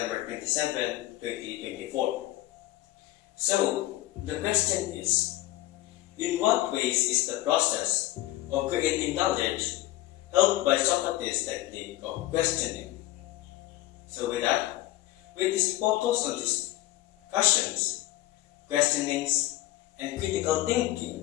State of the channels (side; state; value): right; quieter; 16.1 dB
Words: 27, 2024. So, the question is, in what ways is the process of creating knowledge helped by Socrates' technique of questioning? So with that, with this focus on discussions, questionings, and critical